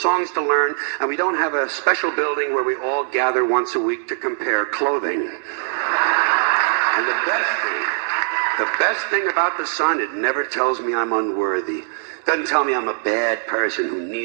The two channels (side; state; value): left; silent; digital silence